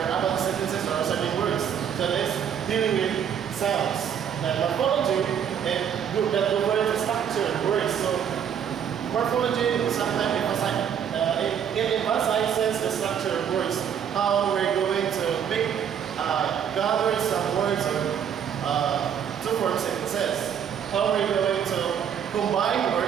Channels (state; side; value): quieter; left; 8.4 dB